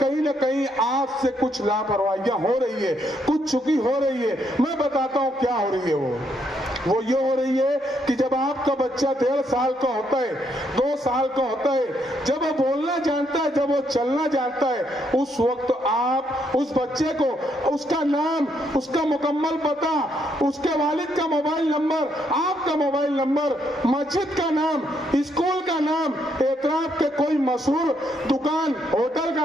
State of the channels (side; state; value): both; normal; correlation 0.75